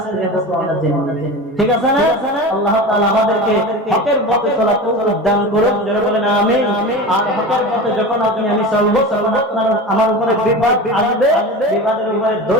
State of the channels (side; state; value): both; normal; correlation 0.29